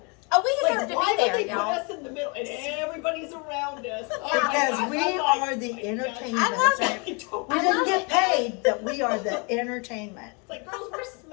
Oh, we deserve Like, why to be would there, they put y'all. us in the middle and everybody's around us? Oh my Because gosh, we I'm like, are the my gosh. entertainment. I love I don't- We I didn't love get it. paid, but we are the entertainment. It's like, girls, we're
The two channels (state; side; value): quieter; right; 32.8 dB